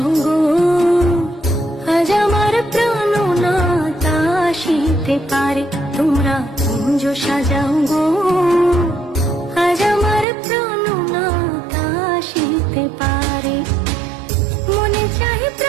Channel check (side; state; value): left; drops out; at 10.2 s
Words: গো, আজ আমার প্রাণনাথ আসিতে পারে। তোমরা কুঞ্জ সাজাও গো, আজ আমার প্রাণনাথ আসিতে পারে। মনে চায়